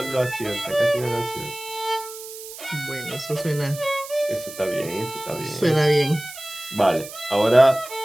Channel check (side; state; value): right; noise; hiss, 13 dB below the sound